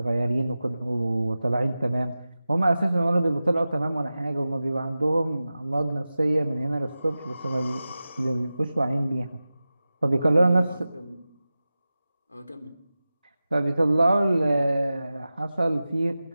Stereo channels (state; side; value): inverted; both; correlation -0.95